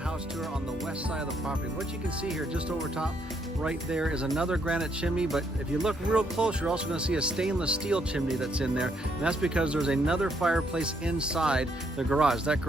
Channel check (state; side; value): normal; both; correlation 0.73